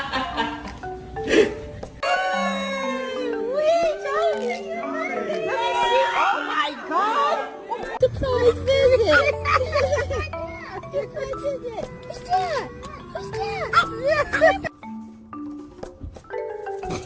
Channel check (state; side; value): identical; both; correlation 1.00